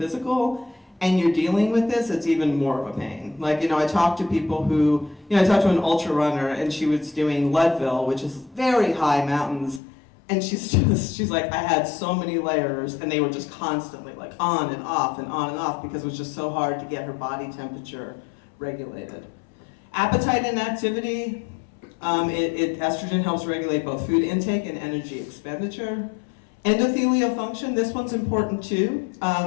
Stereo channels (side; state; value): right; drops out; at 9.8 s